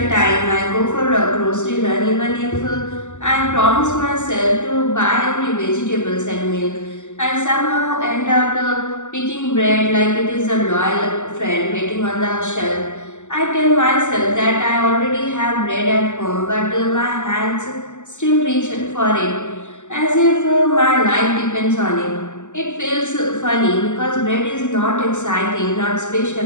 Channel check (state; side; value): late; right; 0.84 ms